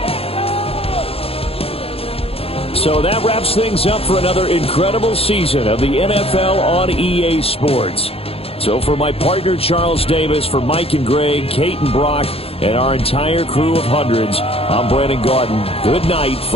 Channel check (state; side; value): late; right; 0.28 ms